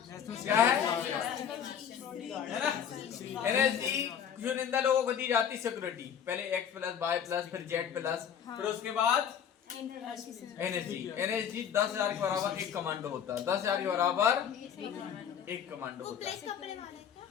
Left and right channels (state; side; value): quieter; right; 8.5 dB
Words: क्या है ना? एनएसजी चुनिंदा लोगों को दी जाती सिक्योरिटी, पहले X+, Y+, फिर Z+, फिर उसके बाद एनएसजी 10,000 के बराबर एक कमांडो होता है, 10,000 के बराबर एक कमांडो होता है।